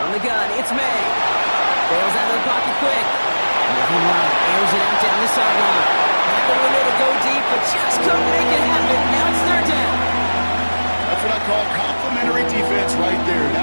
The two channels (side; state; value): both; inverted; correlation -1.00